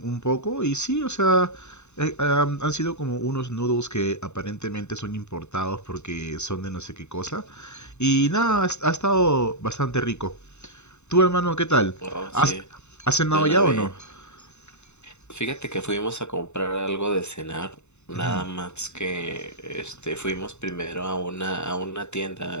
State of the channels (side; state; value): right; late; 0.82 ms